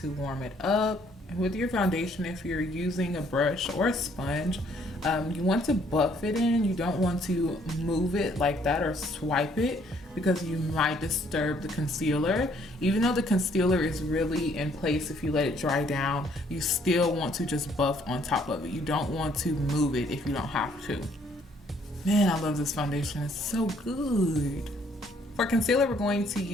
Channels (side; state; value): both; normal; correlation 0.65